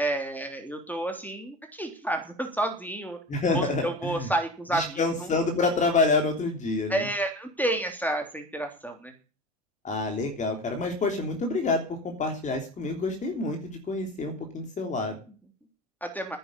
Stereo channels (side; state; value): both; normal; correlation 0.31